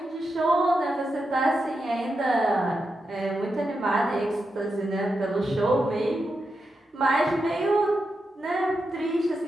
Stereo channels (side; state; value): both; normal; correlation 0.87